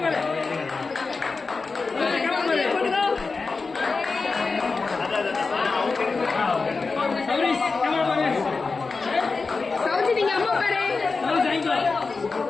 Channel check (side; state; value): right; quieter; 4.2 dB